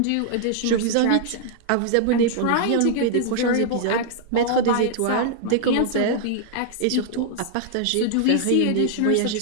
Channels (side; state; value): both; different; correlation -0.01